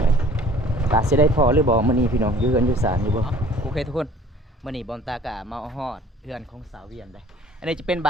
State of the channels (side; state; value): both; normal; correlation 0.51